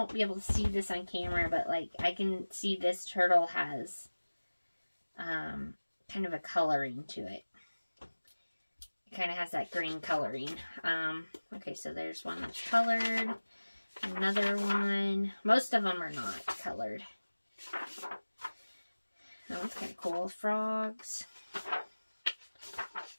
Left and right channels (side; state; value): both; inverted; correlation -1.00